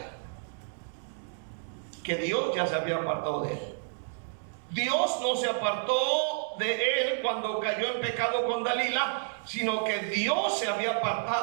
que Dios ya se había apartado de él. Dios no se apartó de él cuando cayó en pecado con Dalila, sino que Dios se había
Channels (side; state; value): left; silent; digital silence